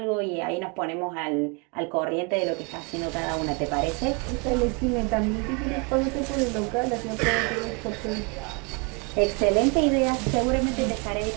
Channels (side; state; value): left; quieter; 32.4 dB